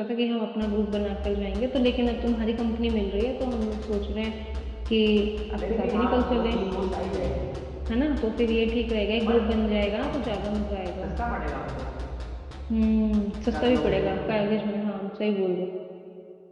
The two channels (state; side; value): identical; both; correlation 1.00